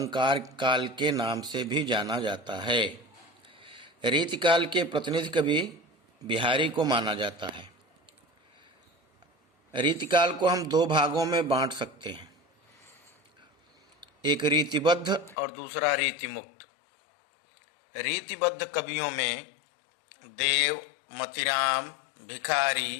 काल के नाम से भी जाना जाता है। रीतिकाल के प्रतिनिधि कवि बिहारी को माना जाता है। रीतिकाल को हम दो भागों में बांट सकते हैं, एक रीतिबद्ध और दूसरा रीतिमुक्त। रीतिबद्ध कवियों में देव, मतिराम,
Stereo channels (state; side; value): drops out; right; at 15.4 s